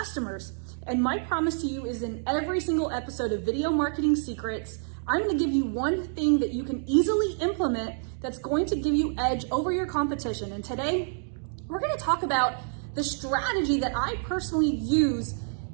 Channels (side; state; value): left; silent; 59 dB below the other